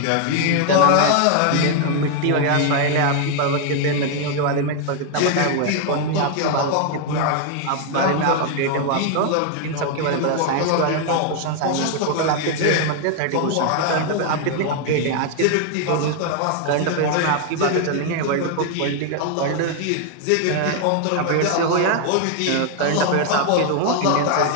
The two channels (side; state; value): both; different; correlation 0.00